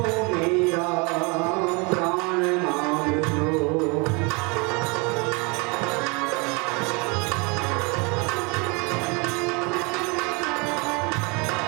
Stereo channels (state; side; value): quieter; left; 29.7 dB